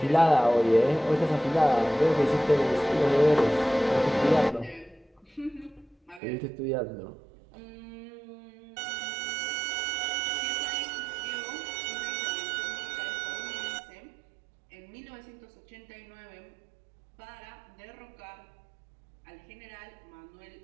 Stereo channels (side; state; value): left; drops out; at 6.2 s